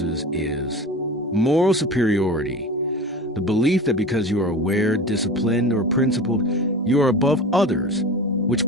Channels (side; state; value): both; normal; correlation 0.33